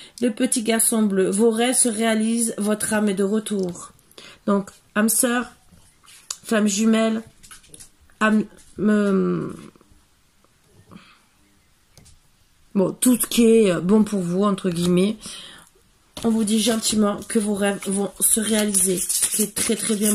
Le petit garçon bleu, vos rêves se réalisent, votre âme est de retour. Donc, âme sœur, femme jumelle, âme... bon, tout ce qui est bon pour vous, entre guillemets. On vous dit gentiment que vos rêves vont se réaliser. Ce qui est très très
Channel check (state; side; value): identical; both; correlation 1.00